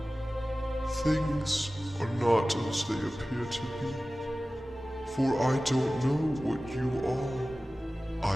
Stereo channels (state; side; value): normal; both; correlation 0.96